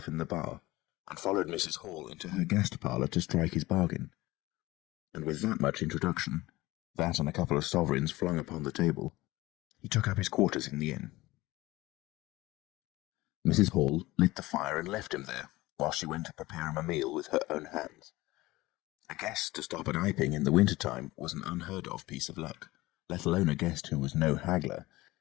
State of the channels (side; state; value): right; quieter; 19.2 dB